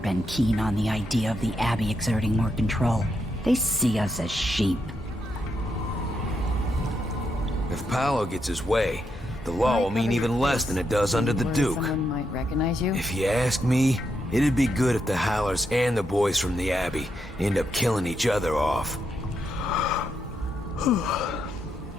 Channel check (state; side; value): normal; both; correlation 0.81